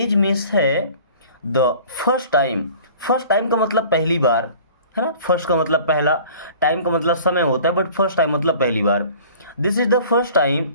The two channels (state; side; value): inverted; both; correlation -0.47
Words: मीन्स है, the first time, first time का मतलब पहली बार, है ना। फर्स्ट का मतलब पहला, टाइम का मतलब समय होता है, बट फर्स्ट टाइम मतलब पहली बार। This is the first